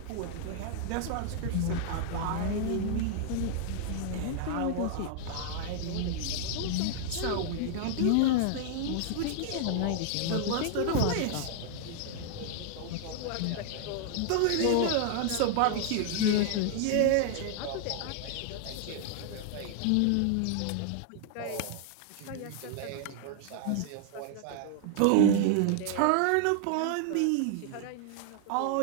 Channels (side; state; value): both; different; correlation 0.00